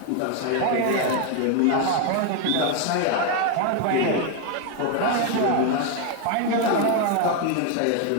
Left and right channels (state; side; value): different; both; correlation 0.01